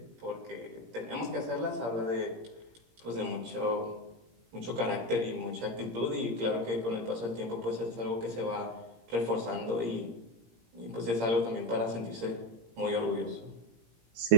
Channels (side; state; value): left; late; 17 ms